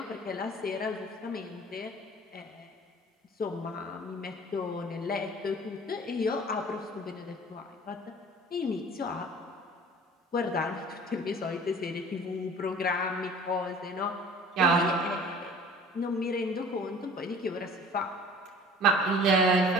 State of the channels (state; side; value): normal; both; correlation 0.46